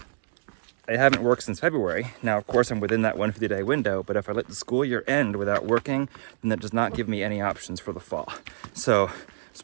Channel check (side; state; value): left; silent; digital silence